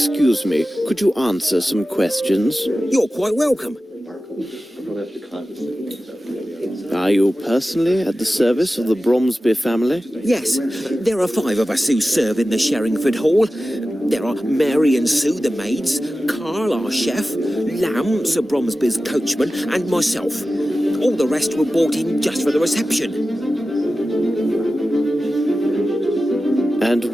me, could you answer some questions? You're quite welcome. Are you personally at the service of the Bromsby family? Yes, there are 5 of us who serve in the Sherringford Hall. There are Mary and Sue, the maids, Carl, our chef, Lamb, Sir Bromsby's coachman, and myself. All the rest were brought in just for the reception. And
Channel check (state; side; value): normal; both; correlation 0.94